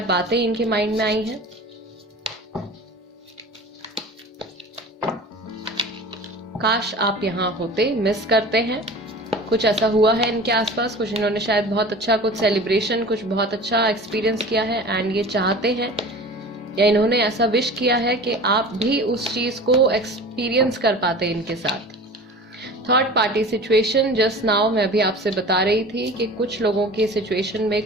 बातें इनके माइंड में आई हैं। काश आप यहाँ होते, मिस करते हैं। कुछ ऐसा हुआ है इनके आसपास, कुछ इन्होंने शायद बहुत अच्छा कुछ सेलिब्रेशन, कुछ बहुत अच्छा एक्सपीरियंस किया है एंड ये चाहते हैं या इन्होंने ऐसा विश किया है कि आप भी उस चीज को एक्सपीरियंस कर पाते इनके साथ। Third party situation, just now मैं अभी आपसे बता रही थी कि कुछ लोगों की सिचुएशन में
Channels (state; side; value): normal; both; correlation 0.38